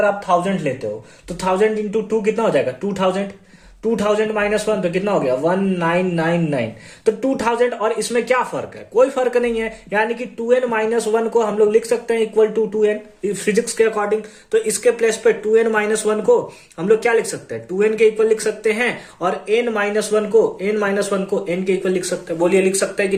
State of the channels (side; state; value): both; identical; correlation 1.00